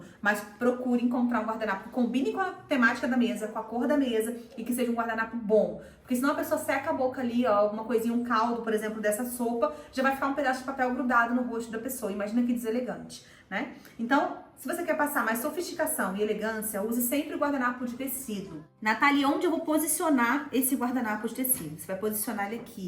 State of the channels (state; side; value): identical; both; correlation 1.00